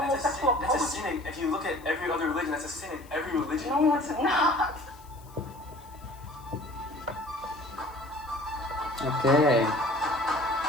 poetry. That's a sin. If you look at every other religion, that's a sin in every religion. No, it's not. Okay.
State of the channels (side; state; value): left; noise; hiss, 25 dB below the sound